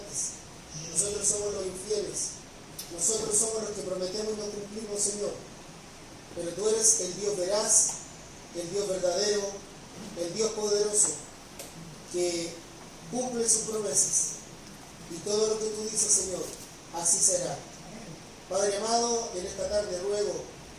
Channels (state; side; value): identical; both; correlation 1.00